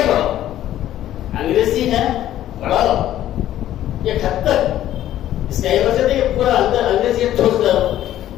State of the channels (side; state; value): right; quieter; 12.6 dB